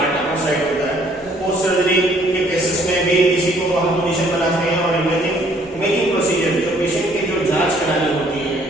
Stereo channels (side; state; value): both; normal; correlation 0.62